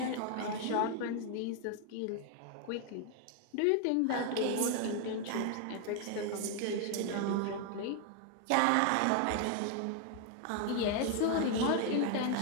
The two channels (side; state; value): both; different; correlation 0.00